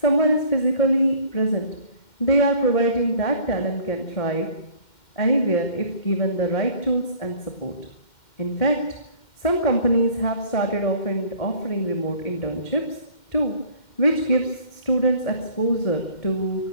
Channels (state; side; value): late; right; 2.1 ms